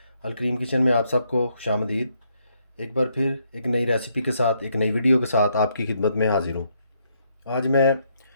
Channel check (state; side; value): inverted; both; correlation -0.75